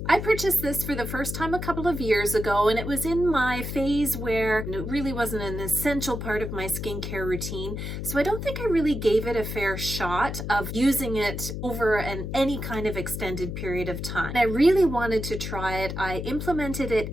I purchased this for the first time a couple of years ago, and it was in my phase where it really wasn't an essential part of my skincare routine. So I don't think I really gave it a fair shot of using it over any kind of extended period of time. I really wanted to try it. I implemented it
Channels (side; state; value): left; noise; hum, 5 dB below the sound